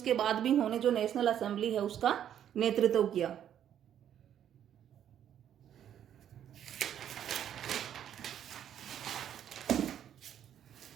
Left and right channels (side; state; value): left; quieter; 10.0 dB